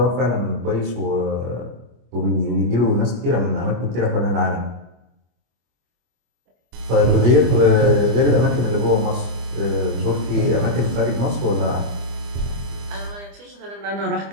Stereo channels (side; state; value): left; late; 25 ms